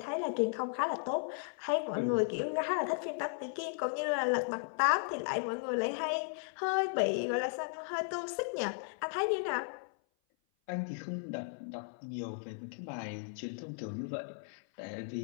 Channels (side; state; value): right; silent; 54 dB below the other